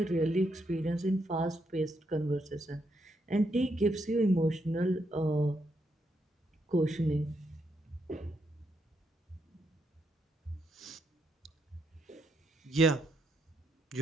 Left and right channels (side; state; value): both; normal; correlation 0.78